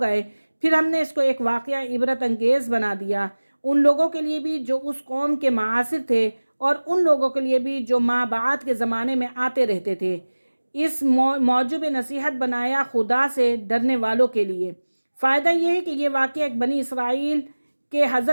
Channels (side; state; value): both; inverted; correlation -1.00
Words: फिर हमने इसको एक वाक़या इबरत अंगेज़ बना दिया, उन लोगों के लिए भी जो उस कौम के मासिर थे और उन लोगों के लिए भी जो माँ बात के ज़माने में आते रहते थे। इस मौजूब नसीहत बनाया खुदा से डरने वालों के लिए। फ़ायदा यह है कि यह वाक़या एक बनी इसराइल के